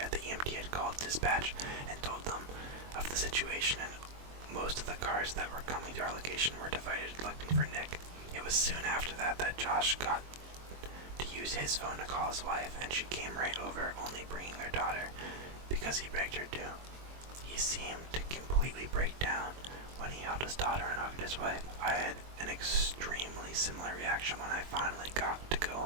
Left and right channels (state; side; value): late; left; 22 ms